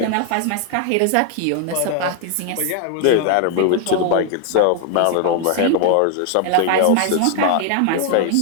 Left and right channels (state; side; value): different; both; correlation 0.00